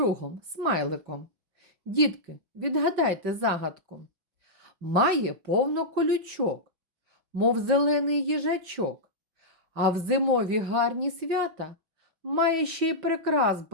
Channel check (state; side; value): late; left; 5.7 ms